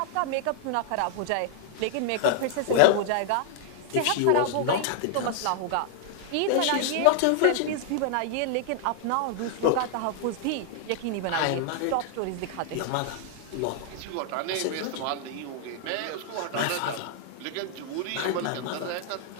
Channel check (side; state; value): both; different; correlation 0.00